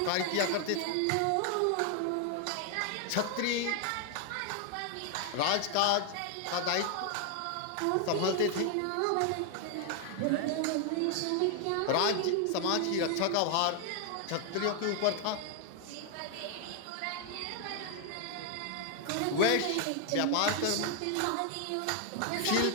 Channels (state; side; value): different; both; correlation 0.00